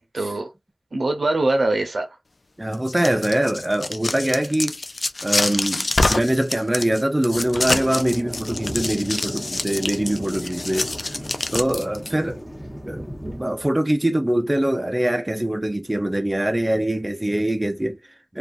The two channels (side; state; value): both; normal; correlation 0.98